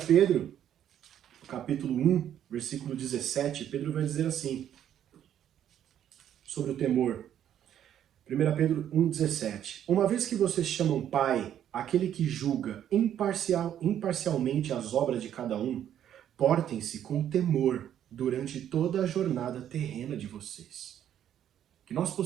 Pedro, capítulo 1, versículo 17, Pedro vai dizer assim, sobre o temor. 1 Pedro 1,17. Uma vez que vocês chamam Pai, aquele que julga imparcialmente as obras de cada um, portem-se com temor durante toda a jornada terrena de vocês. Que nós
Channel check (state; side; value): quieter; left; 10.3 dB